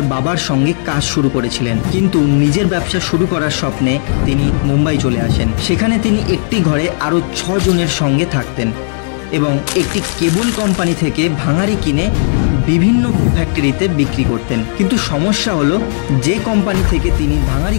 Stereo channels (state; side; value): silent; right; digital silence